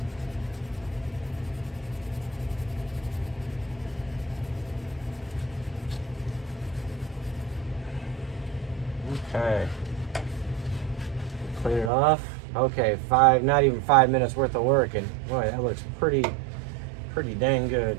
Okay. Clean it off. Okay, not even 5 minutes worth of work, and boy, that looks pretty dang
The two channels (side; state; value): left; drops out; at 11.9 s